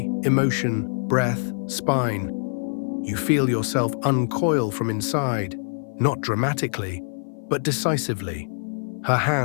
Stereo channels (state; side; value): silent; right; 55 dB below the other